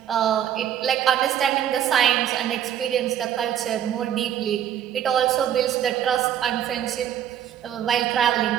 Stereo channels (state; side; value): quieter; left; 10.3 dB